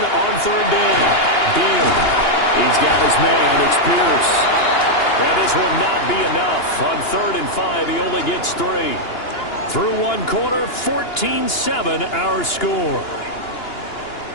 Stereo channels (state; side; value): late; right; 2.9 ms